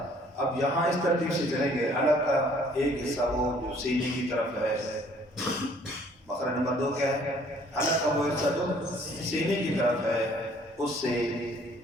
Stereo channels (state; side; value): normal; both; correlation 0.59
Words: اب یہاں اس ترتیب سے چلیں گے، حلق کا ایک حصہ وہ جو سینے کی طرف ہے، مخرج نمبر 2 کیا ہے؟ حلق کا وہ حصہ جو سینے کی طرف ہے، اس سے